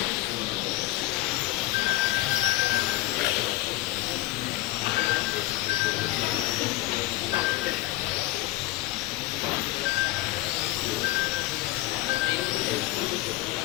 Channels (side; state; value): right; quieter; 18.1 dB